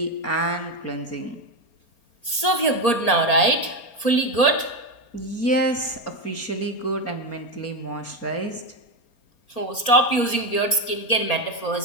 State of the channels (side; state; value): right; late; 4.3 ms